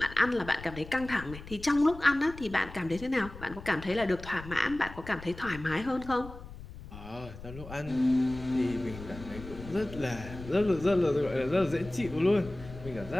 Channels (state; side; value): noise; left; rumble, 14 dB below the sound